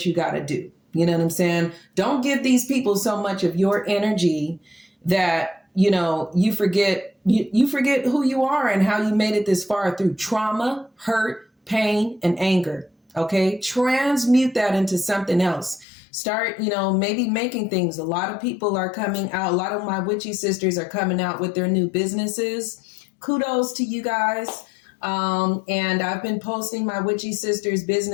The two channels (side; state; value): right; drops out; at 15.9 s